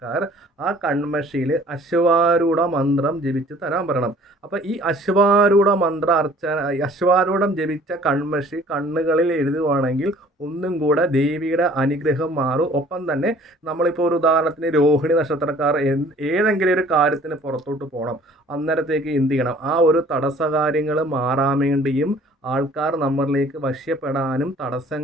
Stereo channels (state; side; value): normal; both; correlation 0.53